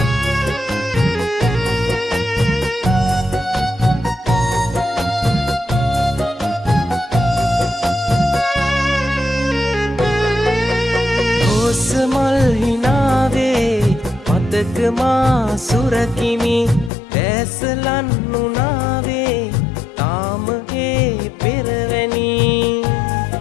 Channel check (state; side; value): drops out; right; at 16.9 s